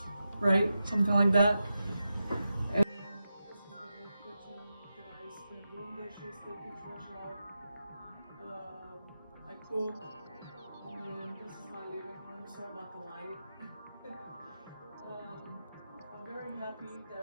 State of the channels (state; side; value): inverted; both; correlation -0.90